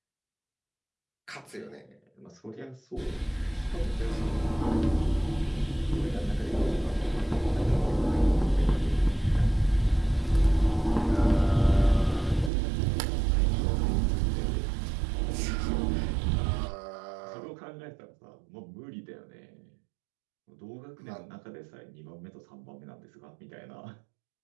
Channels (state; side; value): drops out; left; at 12.5 s